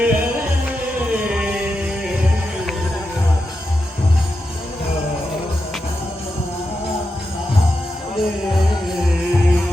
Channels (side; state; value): both; normal; correlation 0.88